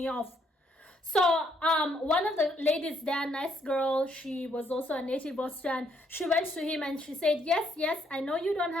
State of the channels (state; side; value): normal; both; correlation 0.71